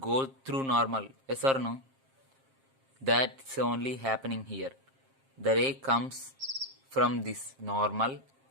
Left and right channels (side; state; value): left; late; 7.5 ms